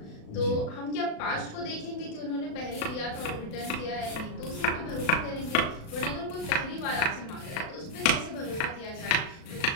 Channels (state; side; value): late; right; 36 ms